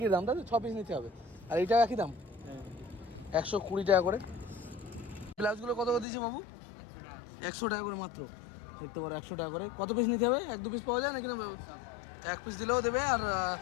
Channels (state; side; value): drops out; right; at 6.1 s